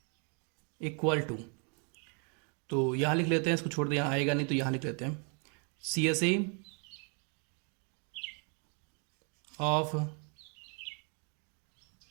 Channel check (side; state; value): left; quieter; 38.4 dB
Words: equal to, तो यहां लिख लेते हैं, इसको छोड़ दे, यहां आएगा नहीं तो यहां लिख लेते हैं CSA of